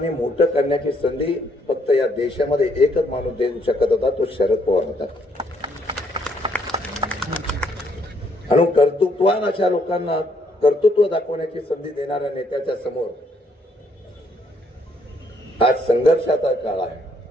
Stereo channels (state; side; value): normal; both; correlation 0.70